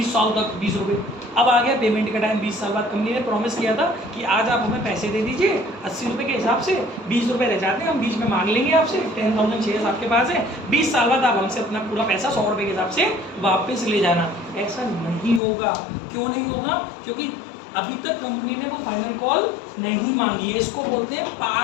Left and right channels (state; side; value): drops out; right; at 15.4 s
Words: साल तक 20 रुपए। अब आ गया पेमेंट का टाइम, 20 साल बाद कंपनी ने प्रॉमिस किया था कि आज आप हमें पैसे दे दीजिए 80 रुपए के हिसाब से, 20 रुपए रह जाते हैं हम बीच में मांग लेंगे आपसे, 10,000 शेयर्स आपके पास है, 20 साल बाद आप हमसे अपना पूरा पैसा 100 रुपए के हिसाब से वापस ले जाना। ऐसा नहीं होगा। क्यों नहीं होगा? क्योंकि अभी तक कंपनी ने वो फाइनल कॉल नहीं मांगी है। इसको बोलते हैं